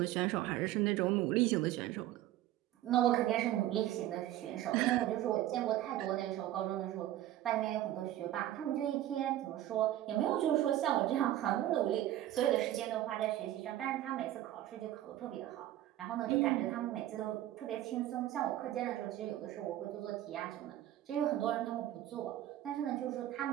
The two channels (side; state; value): left; quieter; 13.6 dB